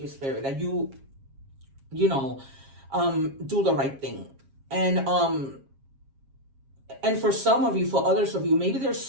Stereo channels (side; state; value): left; late; 7.4 ms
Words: you, Spirit, that you do the right thing. And for some of you, for others of you, maybe there's